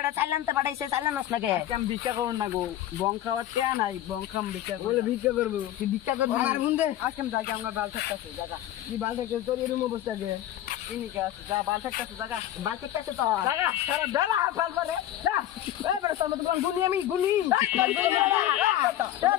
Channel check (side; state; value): right; quieter; 12.6 dB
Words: চাইলানতে পাঠাইছে চাইলানস না কে আজকে আমি ভিক্ষা করুন না গো বং খাওয়ার টিয়া নাই বং খাম ভিক্ষা বলে ভিক্ষা করবো তুই ভিক্ষা করবি মার বুনদে আজকে আমি যাই আমরা বাল থাকতেছে জায়গা কি বাল থেকে তোর এরকম অবস্থা গে ইনিকে আছে যা বাল থাকতেছে জায়গা বাল থেকে আছে তো জায়গা সারা বেলা বাল পারে যা এই বেটা তোর মতো গুনি আমি গুনি